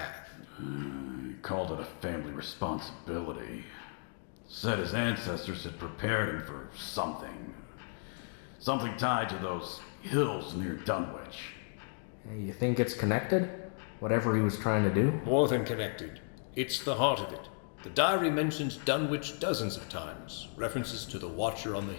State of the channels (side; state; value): right; silent; 55 dB below the other